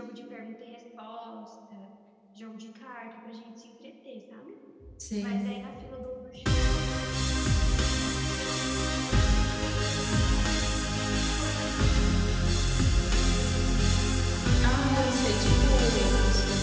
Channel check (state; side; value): identical; both; correlation 1.00